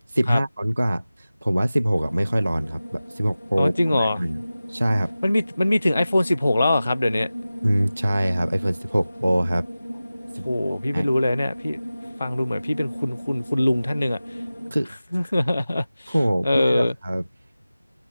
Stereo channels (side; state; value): both; inverted; correlation -0.96